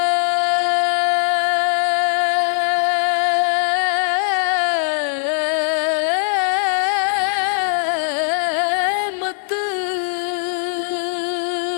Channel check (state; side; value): silent; right; digital silence